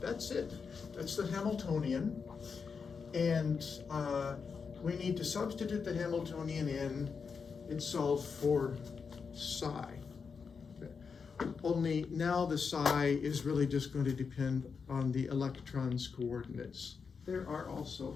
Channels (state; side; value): quieter; right; 5.6 dB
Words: That's it. That's the Hamiltonian. And we need to substitute the Hamiltonian in and solve for psi. Okay. Only now the psi is really just going to depend on the electron's coordinates. There are